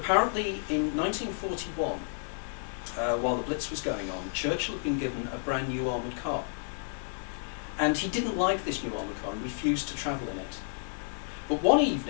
in 1941, while the Blitz was going on, Churchill had been given a brand new armoured car. And he didn't like this new armoured car and refused to travel in it. But one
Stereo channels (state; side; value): silent; right; 57 dB below the other